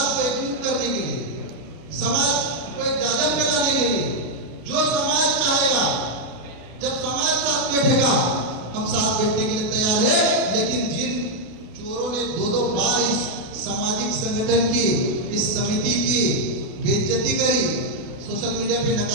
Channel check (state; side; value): late; left; 33 ms